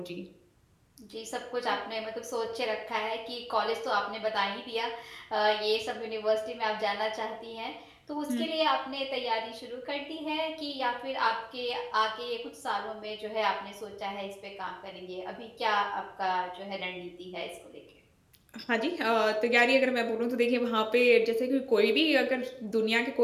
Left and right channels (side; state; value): both; identical; correlation 1.00